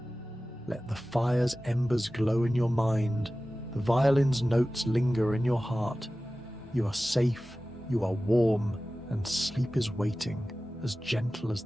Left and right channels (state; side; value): normal; both; correlation 0.96